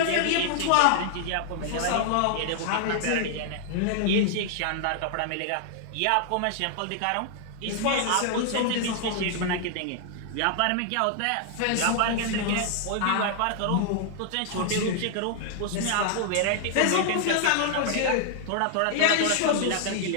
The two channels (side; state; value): both; different; correlation 0.00